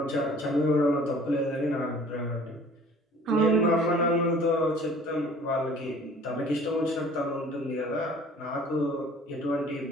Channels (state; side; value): normal; both; correlation 0.50